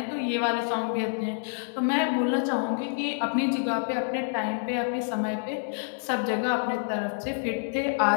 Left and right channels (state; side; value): silent; right; 60 dB below the other